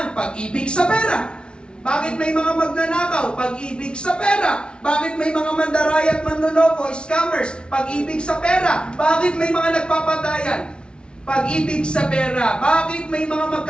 Pag-ibig sa pera. Bakit may mga magnanakaw? Pag-ibig sa pera. Bakit may mga mandaraya at manloloko, scammers? Pag-ibig sa pera. Bakit may mga nagpapatayan? Pag-ibig sa pera. Bakit may mga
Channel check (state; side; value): late; right; 0.056 ms